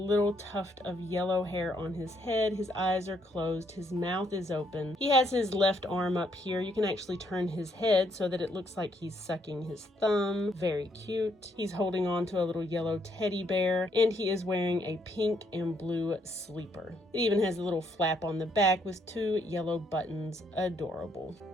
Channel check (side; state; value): both; normal; correlation 0.72